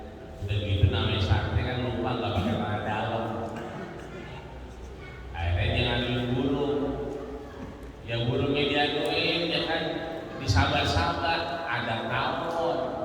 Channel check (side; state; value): both; identical; correlation 1.00